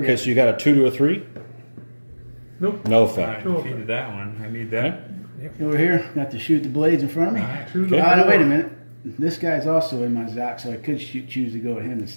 so you got a 2 to a 3. Nope. No I effect. defeated that one. I need that. Over here, got to shoot the blades in front of me. To the Oh, no, wait a floor. minute. This guy's also in my Zoc, so I could choose to go with him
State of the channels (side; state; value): both; inverted; correlation -1.00